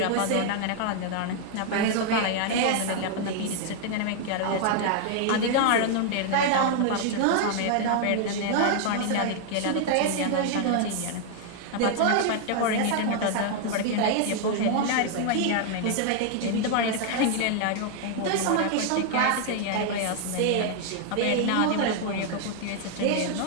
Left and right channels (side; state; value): both; different; correlation 0.00